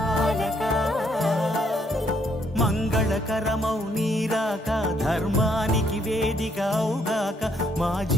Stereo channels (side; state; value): both; normal; correlation 0.70